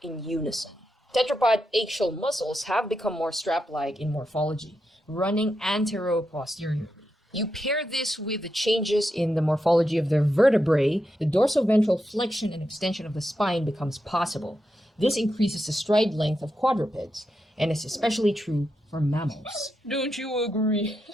in unison. Tetrapod axial muscles have become more strap-like in morphology, running antero-posteriorly. You pair this with the changes in the morphology of their vertebrae, the dorsoventral flexion and extension of the spine becomes possible. This increases the stride length of quadrupeds, and is especially true for mammals. Don't you agree?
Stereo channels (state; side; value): normal; both; correlation 0.86